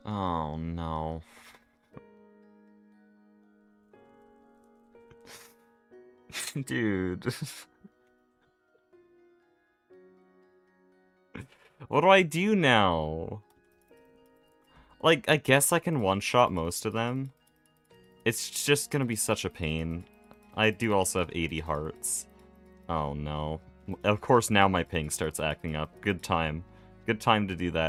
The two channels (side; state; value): both; identical; correlation 1.00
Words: Oh no. Dude. What do I do now? Like, I guess I can one-shot most of them. It's just gonna be such a pain. I do also have 80 hearts. Oh no. Of course now my ping starts acting up. Good time. Good time to do